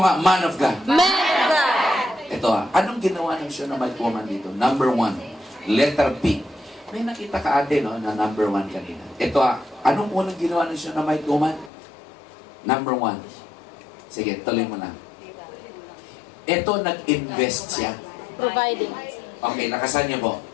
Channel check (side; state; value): right; drops out; at 11.7 s